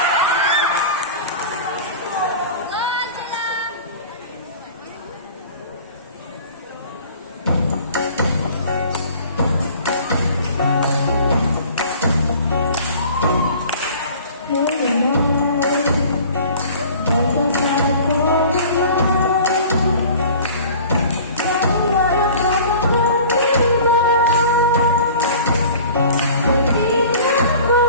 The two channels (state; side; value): inverted; both; correlation -0.44